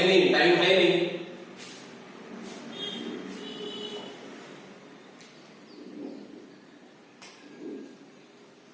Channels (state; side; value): identical; both; correlation 1.00